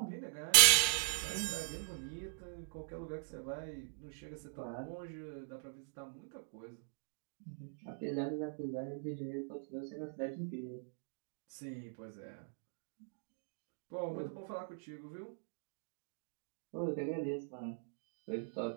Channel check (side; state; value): left; silent; digital silence